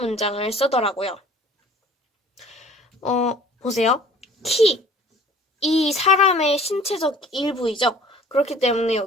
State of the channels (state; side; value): normal; both; correlation 0.51